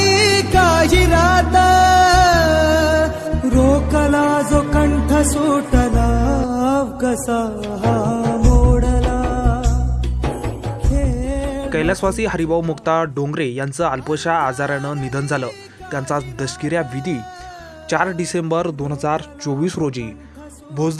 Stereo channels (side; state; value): both; identical; correlation 1.00